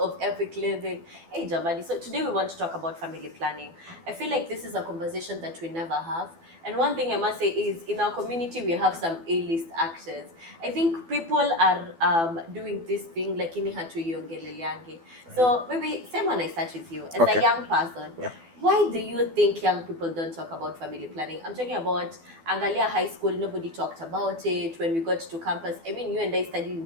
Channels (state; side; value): late; left; 12 ms